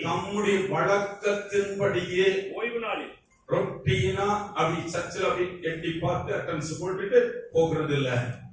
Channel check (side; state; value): both; identical; correlation 1.00